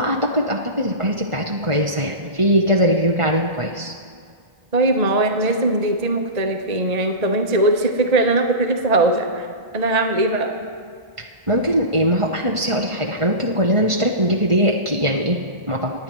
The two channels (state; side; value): late; left; 1.5 ms